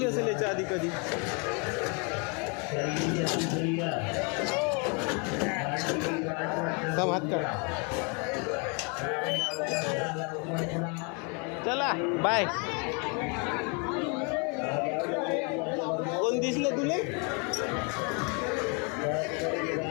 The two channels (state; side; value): quieter; right; 34.3 dB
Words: असेल याच्या आधी कधी. सब हात काढ. चला बाय. कोण दिसले तुले?